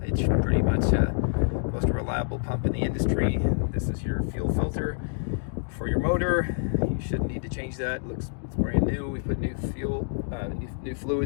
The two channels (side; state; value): right; silent; digital silence